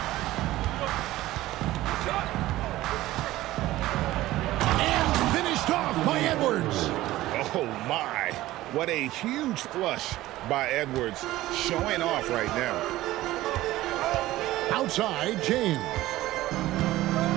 And finished off by Edwards. Oh, my. What a huge flush by Edwards, showing off right now. Outside, James.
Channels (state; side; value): quieter; left; 16.4 dB